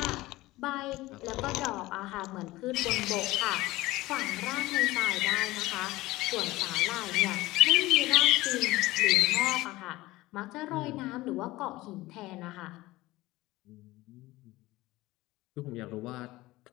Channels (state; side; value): quieter; right; 18.8 dB